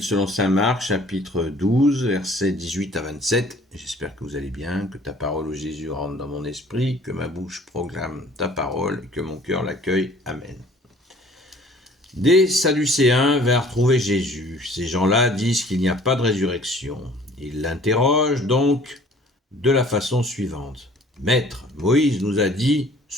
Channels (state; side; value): normal; both; correlation 0.53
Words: selon saint Marc, chapitre 12, versets 18 à 27. J'espère que vous allez bien, que ta parole, ô Jésus, rentre dans mon esprit, que ma bouche proclame ta parole et que mon cœur l'accueille. Amen. Des Sadducéens vinrent trouver Jésus. Ces gens-là disent qu'il n'y a pas de résurrection. Ils l'interrogent donc de la façon suivante. « Maître, Moïse nous a dit